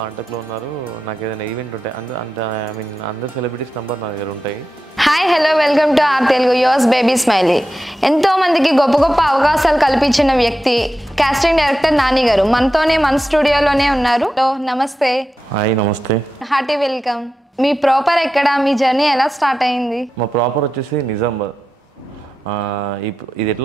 ఉన్నారు. నాకు ఏదైనా ఈవెంట్ ఉంటాయి అందరు సెలబ్రిటీస్ నెంబర్ నా దగ్గర ఉంటాయి. Hi, hello, welcome to our Telugu yours baby smiley. ఎంతో మందికి గొప్ప గొప్ప అవకాశాలు కల్పించిన వ్యక్తి కాస్టింగ్ డైరెక్టర్ నాని గారు మనతోనే మన స్టూడియోలోనే ఉన్నారు. నమస్తే. హాయ్ నమస్తే. Hearty welcome. మీ ప్రాపర్ ఎక్కడ? మీ జర్నీ ఎలా స్టార్ట్ అయింది? మా ప్రాపర్ వచ్చేసి నిజామాబాద్. ఇది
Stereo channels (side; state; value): both; normal; correlation 0.91